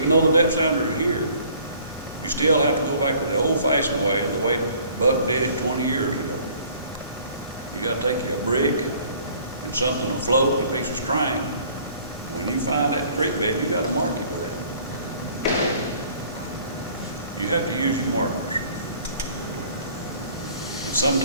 though the depth sounders are here, you still have to go back to the old-fashioned way, the way Buck did it 20 years ago. You gotta take you a brick and something to float, a piece of string. When you find that creek bed, you gotta mark it with that. You have to use your markers.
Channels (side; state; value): both; inverted; correlation -0.55